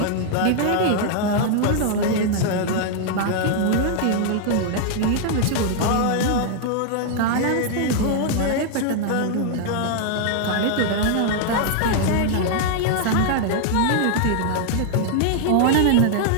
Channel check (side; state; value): both; different; correlation 0.00